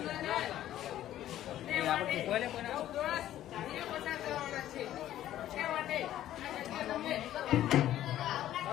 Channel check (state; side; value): quieter; right; 12.7 dB